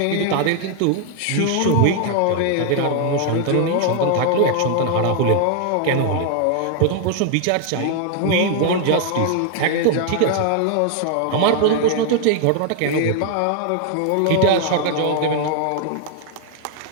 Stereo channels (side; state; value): both; different; correlation 0.00